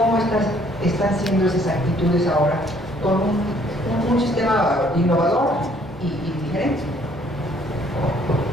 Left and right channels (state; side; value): normal; both; correlation 0.62